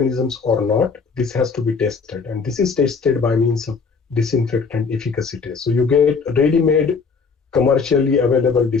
or not, this has to be tested. And this is tested by means of disinfectant efficacy test. So you get ready-made commercially available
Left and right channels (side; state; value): right; quieter; 5.1 dB